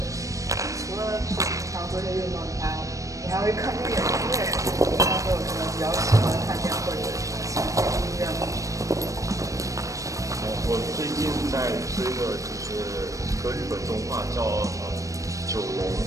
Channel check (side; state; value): left; late; 0.16 ms